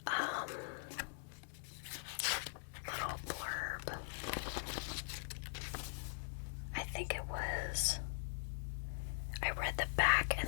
little blurb. I think it was. I read the back and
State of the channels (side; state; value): right; silent; digital silence